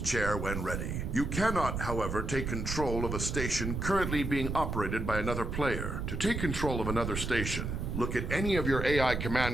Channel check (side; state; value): right; noise; rumble, 3 dB below the sound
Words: when ready. You cannot, however, take control of a station currently being operated by another player. To take control of another station, look at any of your AI